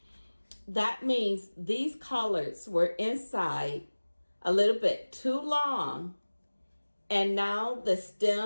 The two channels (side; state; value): both; inverted; correlation -1.00